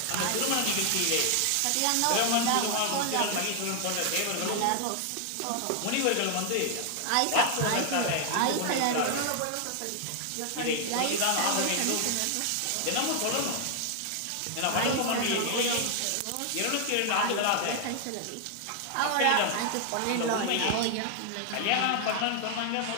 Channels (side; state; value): both; different; correlation 0.00